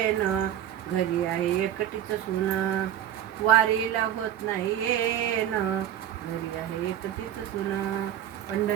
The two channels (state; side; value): quieter; left; 11.0 dB